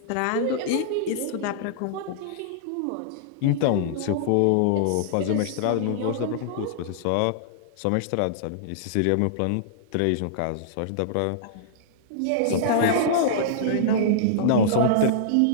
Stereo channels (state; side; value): different; both; correlation -0.02